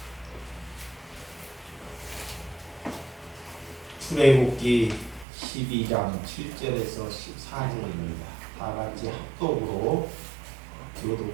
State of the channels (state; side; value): drops out; left; at 5.2 s